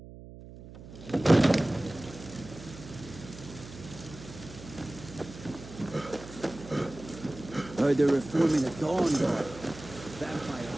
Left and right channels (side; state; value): right; noise; hum, 16 dB below the sound